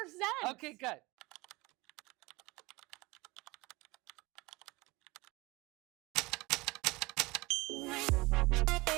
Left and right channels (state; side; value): quieter; left; 23.0 dB